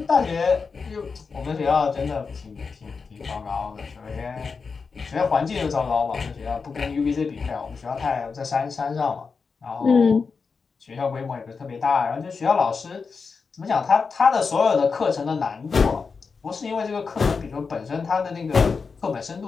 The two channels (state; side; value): quieter; right; 5.0 dB